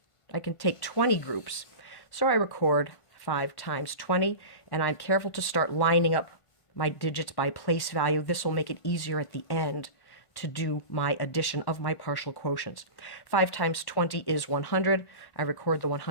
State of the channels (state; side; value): late; right; 1.5 ms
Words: 20 groups. So I record 5 times 20, and I'm careful to start lining up my digits by place value. This will make it easier at the end to do my addition of my partial quotients. 5 times 20 is 100. I record the